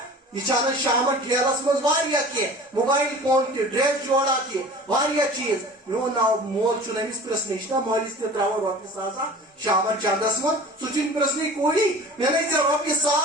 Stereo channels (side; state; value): both; normal; correlation 0.41